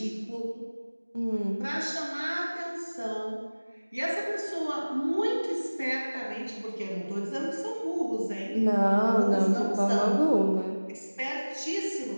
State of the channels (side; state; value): both; inverted; correlation -1.00